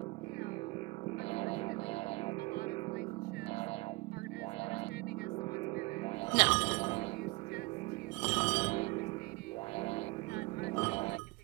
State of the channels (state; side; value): quieter; left; 24.7 dB